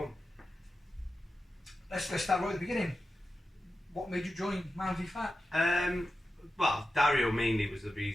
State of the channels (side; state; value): both; normal; correlation 0.92